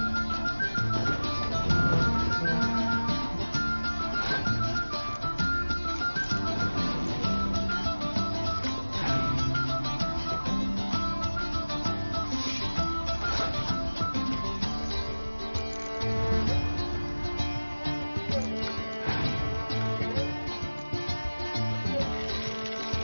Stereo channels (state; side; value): inverted; both; correlation -1.00